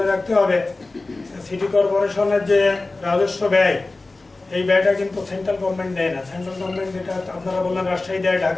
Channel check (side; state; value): right; quieter; 3.3 dB